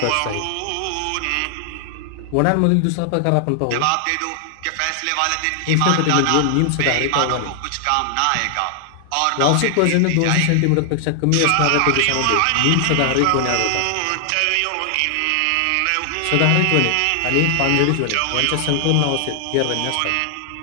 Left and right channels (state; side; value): different; both; correlation 0.00